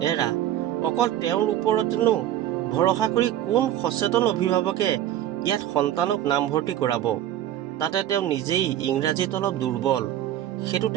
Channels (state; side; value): quieter; left; 12.0 dB